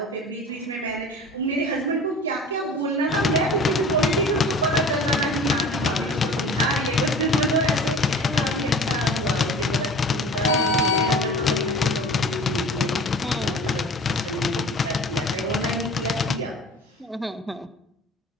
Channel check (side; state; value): both; normal; correlation 0.41